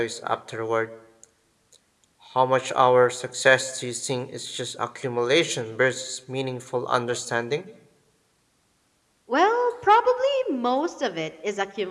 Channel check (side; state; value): both; identical; correlation 1.00